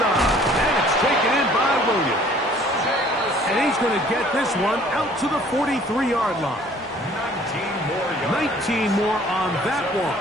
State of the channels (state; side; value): normal; both; correlation 0.55